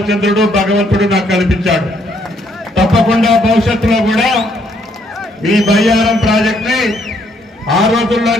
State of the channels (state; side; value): normal; both; correlation 0.70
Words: భగవంతుడు నాకు కల్పించాడు. తప్పకుండా భవిష్యత్తులో కూడా ఈ బయ్యారం ప్రాజెక్ట్ ని ఆ